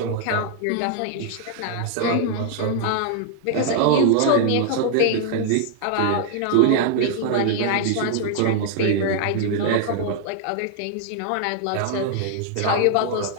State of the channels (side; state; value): both; different; correlation 0.00